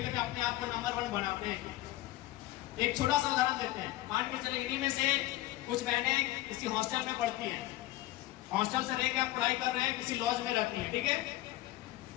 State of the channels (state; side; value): quieter; right; 16.5 dB